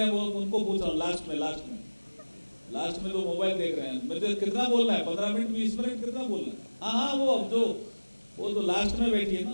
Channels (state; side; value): inverted; both; correlation -1.00